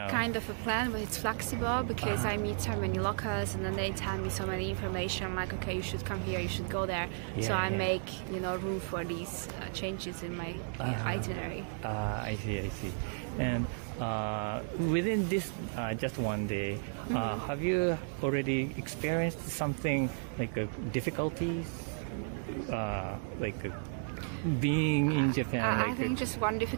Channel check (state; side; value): silent; left; digital silence